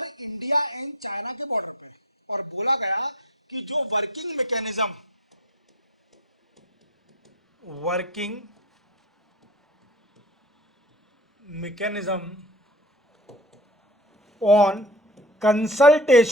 इंडिया एंड चाइना के बॉर्डर पे। और बोला गया कि जो working mechanism on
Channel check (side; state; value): both; normal; correlation 0.35